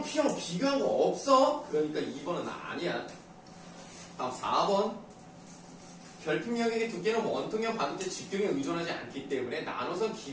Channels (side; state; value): both; identical; correlation 1.00